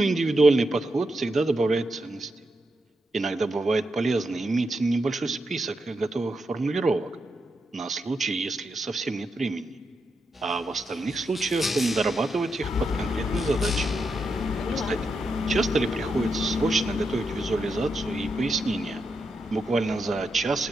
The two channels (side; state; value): both; normal; correlation 0.85